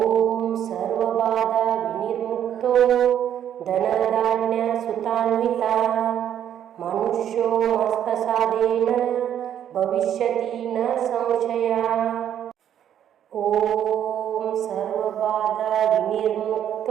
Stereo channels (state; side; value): quieter; left; 10.0 dB